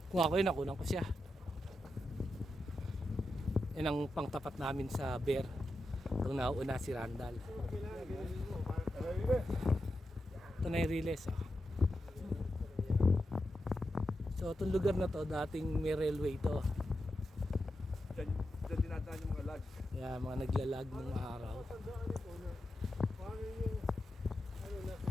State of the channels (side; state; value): both; normal; correlation 0.88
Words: Kung ako yun, nakunan ko siya. Yan ang pangtapat namin sa bear. Itong nauuna si Randall. Ito na yung release. Oh. So itong lugar na to, dating may railway to. Diyan dinadaan yung mga lag. Kaya mga naglalag ng araw. Paano yung ano nasa